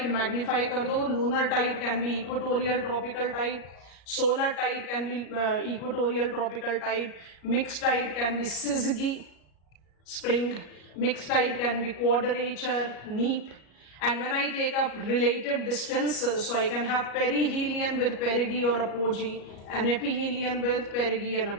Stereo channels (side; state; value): right; late; 33 ms